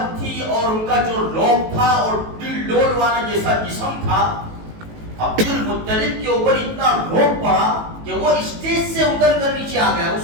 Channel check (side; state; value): left; late; 18 ms